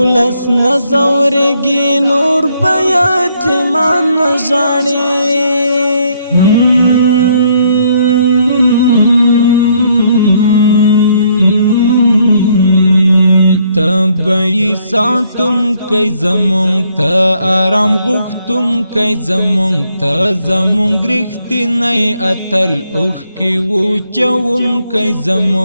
نزورگی نور بیاتمان نجاڑی تبعی ساتم کئی زمون تا آرام غختم کئی زمون تا زمون گرختی نئی اتل اوخ کی وچون کئی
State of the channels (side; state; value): both; inverted; correlation -0.69